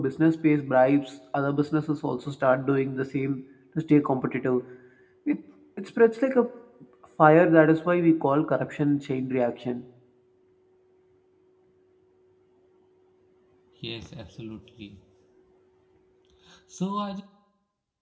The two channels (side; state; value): both; identical; correlation 1.00